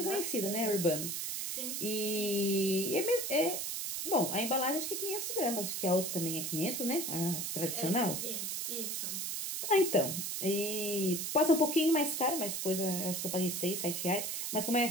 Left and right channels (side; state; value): right; noise; hiss, 2 dB below the sound